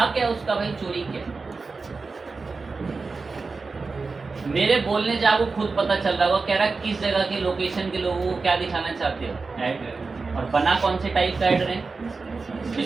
क्या उसका भाई चोरी क्या? मेरे बोलने से आपको खुद पता चल रहा होगा। कह रहा किस जगह के लोकेशन के लोगों को क्या दिखाना चाहते हो ऐड, और बना कौन से टाइप का ऐड रहे?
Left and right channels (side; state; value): left; quieter; 4.2 dB